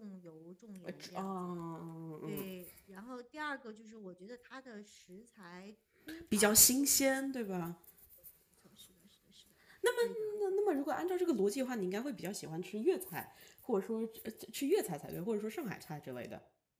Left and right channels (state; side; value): identical; both; correlation 1.00